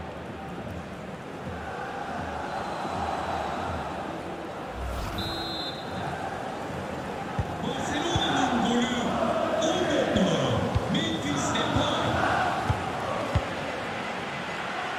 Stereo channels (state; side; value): identical; both; correlation 1.00